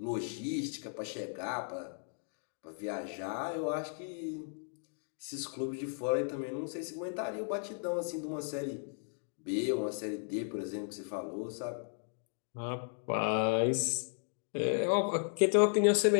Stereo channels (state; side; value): silent; right; 54 dB below the other